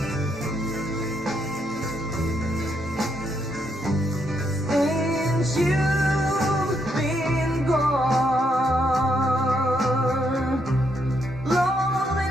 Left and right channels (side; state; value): both; normal; correlation 0.77